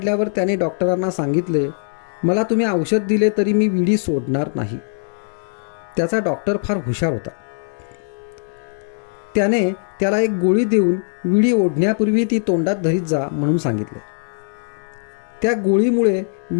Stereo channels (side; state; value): right; silent; digital silence